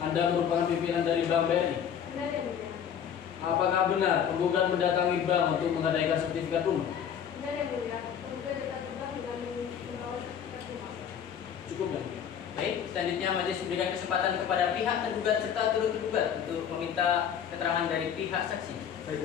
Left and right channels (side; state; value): right; quieter; 8.4 dB